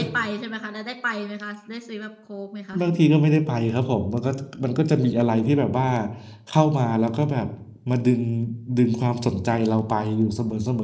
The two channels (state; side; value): identical; both; correlation 1.00